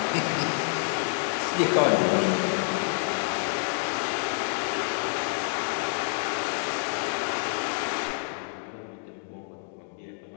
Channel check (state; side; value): silent; right; 59 dB below the other